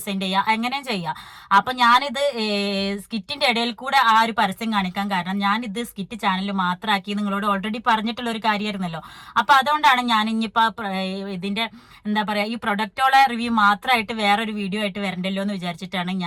ചെയ്യാം, എങ്ങനെയും ചെയ്യാം. അപ്പൊ ഞാനിത് സ്കിറ്റിന്റെ ഇടയിൽ കൂടെ ആ ഒരു പരസ്യം കാണിക്കാൻ കാരണം ഞാനിത് സ്കിറ്റ് ചാനൽ മാത്രമാക്കി നിങ്ങളോട് ഓൾറെഡി പറഞ്ഞിട്ടുള്ള ഒരു കാര്യമായിരുന്നല്ലോ. അപ്പൊ അതുകൊണ്ടാണ് ഞാൻ ഇനിയിപ്പോ ഇതിന്റെ എന്താ പറയാ ഈ പ്രൊഡക്റ്റോളെ റിവ്യൂ മാത്രമായിട്ട് വേറൊരു വീഡിയോ ആയിട്ട് വരണ്ടല്ലോ എന്ന് വിചാരിച്ചിട്ടാണ്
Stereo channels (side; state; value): both; identical; correlation 1.00